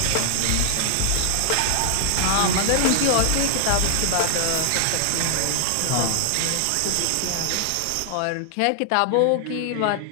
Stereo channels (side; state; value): both; different; correlation -0.01